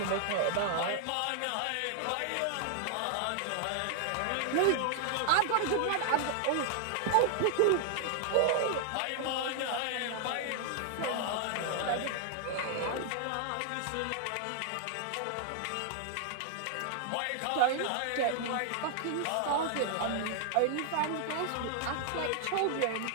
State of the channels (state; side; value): different; both; correlation 0.00